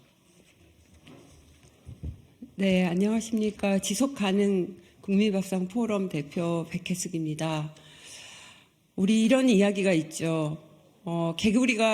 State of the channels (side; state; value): both; identical; correlation 1.00